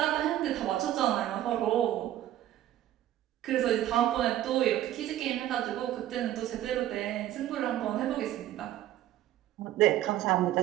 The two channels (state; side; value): quieter; left; 13.0 dB